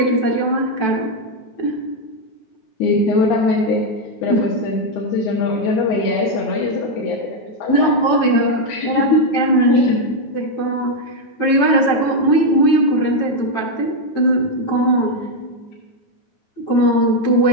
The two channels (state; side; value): late; right; 9.0 ms